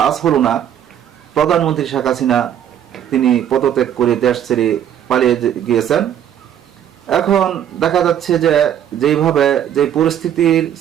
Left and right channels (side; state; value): left; quieter; 9.9 dB